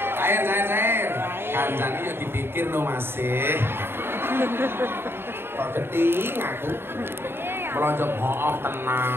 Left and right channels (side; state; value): left; late; 0.11 ms